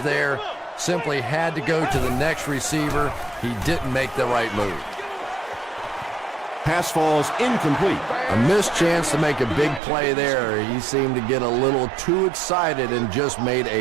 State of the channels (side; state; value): left; drops out; at 9.8 s